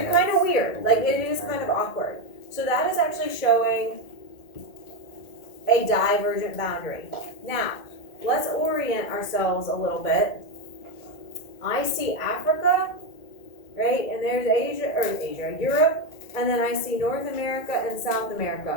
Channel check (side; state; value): right; late; 1.9 ms